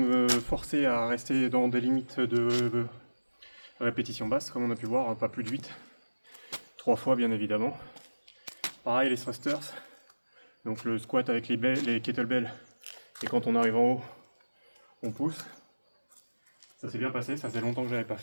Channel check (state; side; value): inverted; both; correlation -1.00